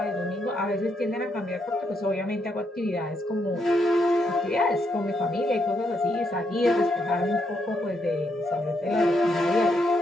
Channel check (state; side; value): normal; both; correlation 0.77